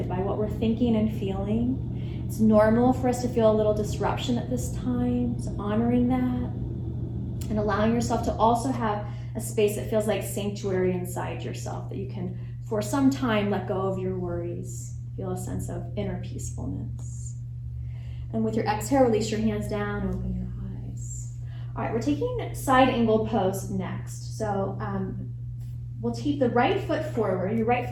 by what we're thinking and feeling. It's normal for us to feel a little disruption at this time, so honoring that and allowing yourself to also have a space that feels like sanctuary inside yourself, that you can, for some time, let go of your worries, feel a sense of inner peacefulness. And with your exhale, release your hands down, open your eyes. All right, we're taking side angle pose next. So we'll keep the right foot forward. Your right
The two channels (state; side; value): identical; both; correlation 1.00